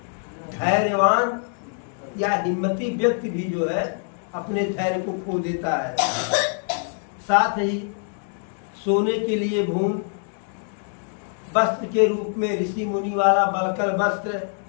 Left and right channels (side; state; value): right; silent; 57 dB below the other